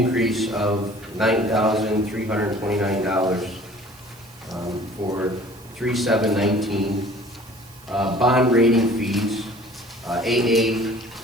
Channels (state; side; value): noise; right; hiss, 25 dB below the sound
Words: of $9,329 for 3719. Bond rating fees, AA